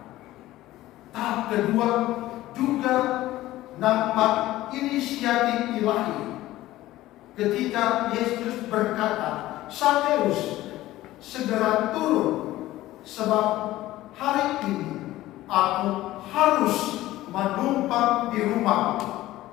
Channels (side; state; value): right; quieter; 16.0 dB